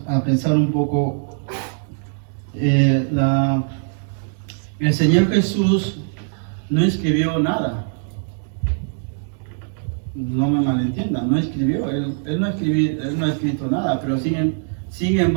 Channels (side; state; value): left; silent; 65 dB below the other